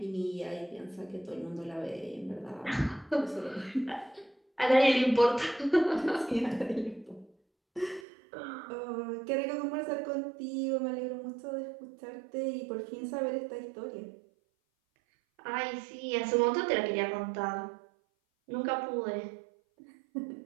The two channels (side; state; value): left; drops out; at 8.0 s